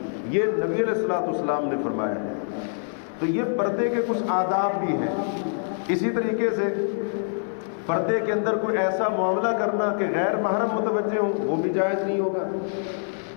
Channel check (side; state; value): right; silent; digital silence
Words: یہ نبی علیہ الصلوۃ والسلام نے فرمایا ہے۔ تو یہ پردے کے کچھ آداب بھی ہیں۔ اسی طریقے سے پردے کے اندر کوئی ایسا معاملہ کرنا کہ غیر محرم متوجہ ہوں، وہ بھی جائز نہیں ہوگا۔